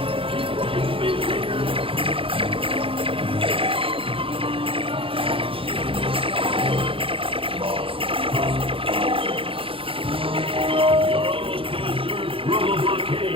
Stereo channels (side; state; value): left; late; 0.26 ms